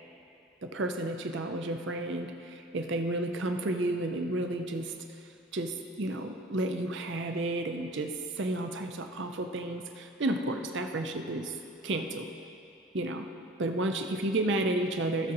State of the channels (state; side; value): normal; both; correlation 0.44